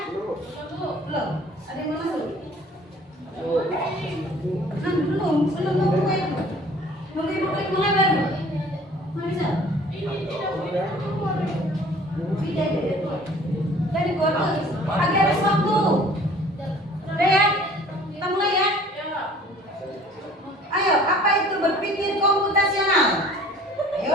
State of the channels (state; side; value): normal; both; correlation 0.51